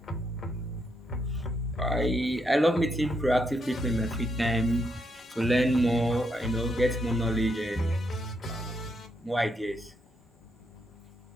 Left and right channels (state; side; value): normal; both; correlation 0.79